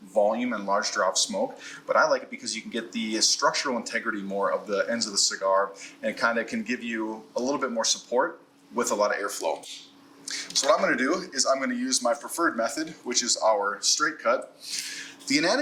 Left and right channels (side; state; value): both; identical; correlation 1.00